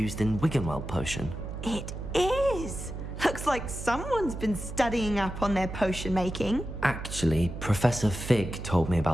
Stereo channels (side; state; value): right; noise; hum, 9 dB below the sound